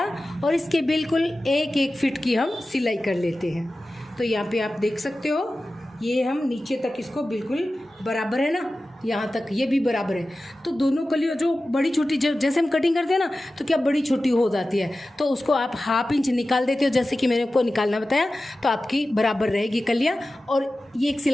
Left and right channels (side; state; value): both; normal; correlation 0.95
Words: और इसके बिल्कुल 1-1 फिट की हम सिलाई कर लेते हैं। तो यहाँ पे आप देख सकते हो, ये हम नीचे तक इसको बिल्कुल बराबर है ना, यहाँ तक ये भी बराबर है। तो दोनों कलियों जो बड़ी छोटी, जैसे हम कटिंग करते हैं ना तो क्या बड़ी छोटी हो जाती है, तो उसको आप हाफ इंच निकाल देते हो, जैसे कि मैंने आपको निकालना बताया, तो आपकी बराबर रहेगी कलियाँ। और ये 1